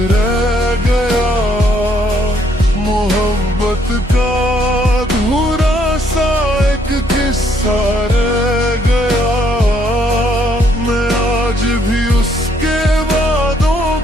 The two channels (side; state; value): both; normal; correlation 0.69